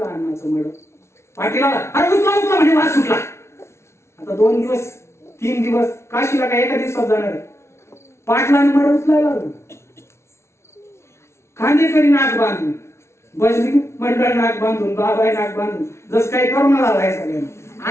अण्णाचं मड. पाटीला अरे उचला म्हणजे वास सुटला. आता 2 दिवस 3 दिवस काशीला काय एका दिवसात जाणार आहे. पाटलाने मड उचलायला लागलं. खांदेकरी नाक बांधून, भजनी मंडळ नाक बांधून, बाबाई नाक बांधून, जसं काही करोना झालाय सगळ्यांना.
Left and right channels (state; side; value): late; right; 0.13 ms